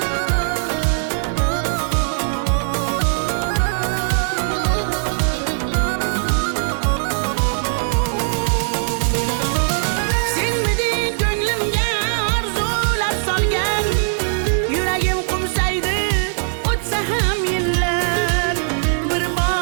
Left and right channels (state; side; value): silent; left; digital silence